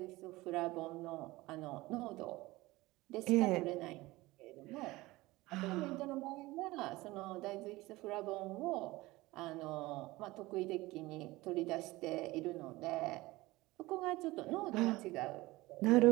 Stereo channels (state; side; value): quieter; left; 19.8 dB